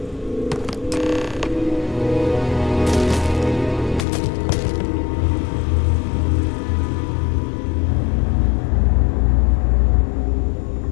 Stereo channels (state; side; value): drops out; right; at 4.0 s